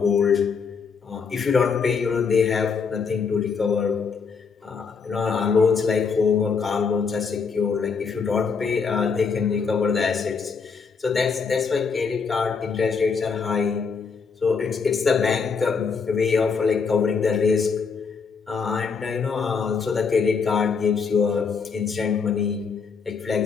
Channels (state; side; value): quieter; right; 5.5 dB